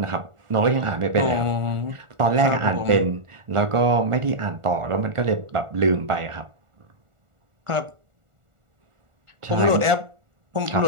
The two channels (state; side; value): late; left; 1.4 ms